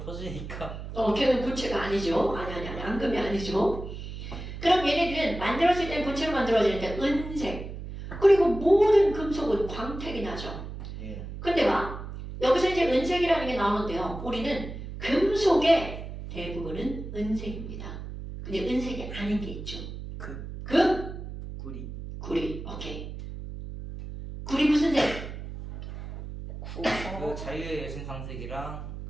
걔는 고체가 아니죠. 아니, 앙금이 아니죠. 그럼 얘네들은 만들어질 땐 고체로 만들어지는데 은색. 그리고 모든 금속은 광택이 나죠. 예. 근데 봐. 여기서 이제 은색이라는 게 나오는데요. 우리는 금속의 대부분은 은색입니다. 근데 은색이 아닌 게 있죠. 금? 구리 구리. 오케이. 구리 무슨 색? 그 자유의 여신상색이랑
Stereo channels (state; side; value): noise; right; hum, 9 dB below the sound